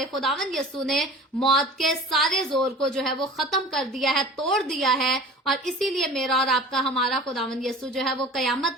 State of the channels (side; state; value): both; normal; correlation 0.41